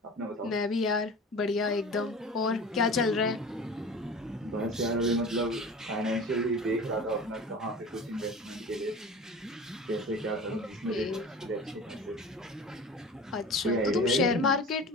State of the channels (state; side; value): normal; both; correlation 0.37